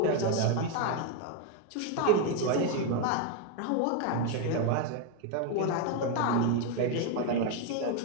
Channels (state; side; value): different; both; correlation 0.01